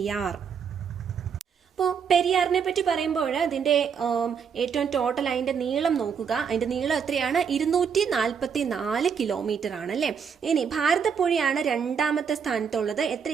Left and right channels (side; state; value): left; quieter; 6.8 dB